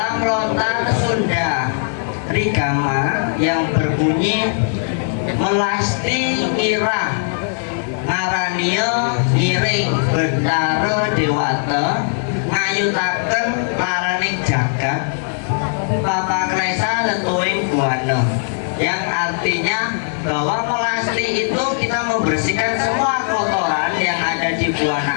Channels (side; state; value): right; silent; 67 dB below the other